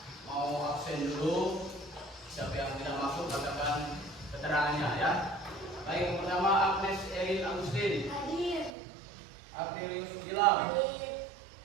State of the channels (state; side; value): drops out; left; at 8.7 s